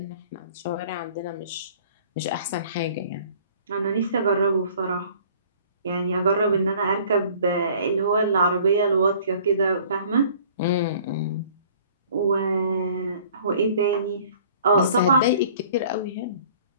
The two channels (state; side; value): inverted; both; correlation -0.53